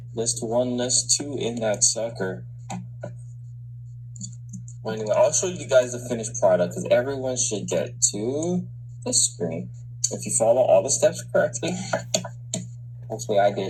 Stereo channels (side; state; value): both; identical; correlation 1.00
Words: List one, list two in that sucker. Well, anyway, I'll show you guys the finished product because everyone should get to this screen. If you follow all the steps correctly, hopefully I